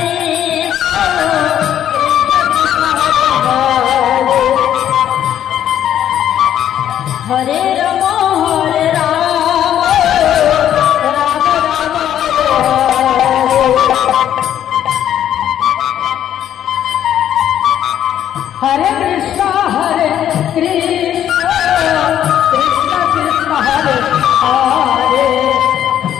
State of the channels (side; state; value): right; quieter; 10.7 dB